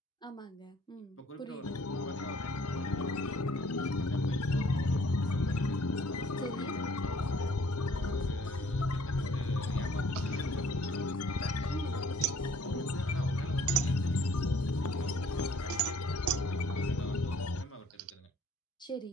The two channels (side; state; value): both; normal; correlation 0.58